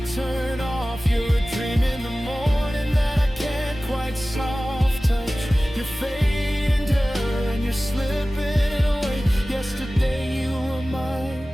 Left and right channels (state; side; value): normal; both; correlation 0.97